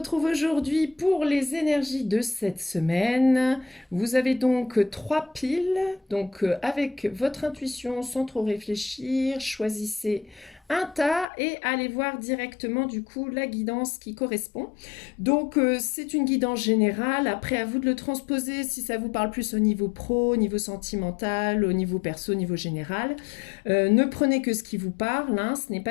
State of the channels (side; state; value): right; drops out; at 11.2 s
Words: aujourd'hui pour les énergies de cette semaine. Vous avez donc trois piles, donc avec votre intuition sans trop réfléchir, choisissez un tas et allez voir directement du coup la guidance qui correspond. Donc c'est une guidance générale, après à vous de le transposer si ça vous parle plus au niveau pro, au niveau sentimental, au niveau perso, au niveau général. Ne prenez que ce qui vous parle, hein, ce n'est